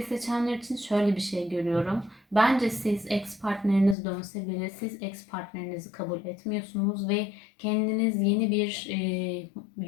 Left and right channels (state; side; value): drops out; right; at 4.0 s